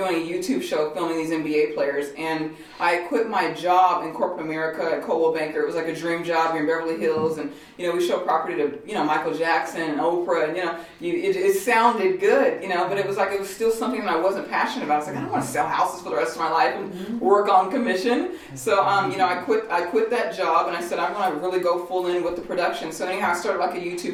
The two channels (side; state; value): both; identical; correlation 1.00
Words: a YouTube show filming these NBA players, and I quit my job in corporate America at Coldwell Banker. It was like a dream job here in Beverly Hills, and we showed property to Michael Jackson and Oprah, and it sounded good, but it was still something that I wasn't passionate about. I was like, I don't want to sell houses for the rest of my life and work on commission. So I quit that job, and I said I'm going to really go full in with the production. So anyhow, I started like a